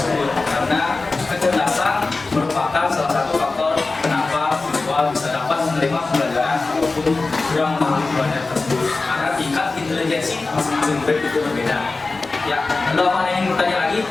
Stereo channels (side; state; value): right; quieter; 3.6 dB